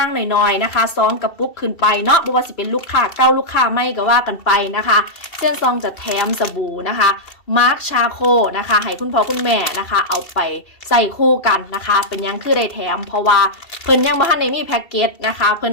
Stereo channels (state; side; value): late; right; 2.7 ms